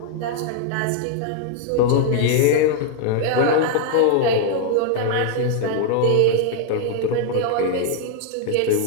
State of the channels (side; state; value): both; different; correlation 0.00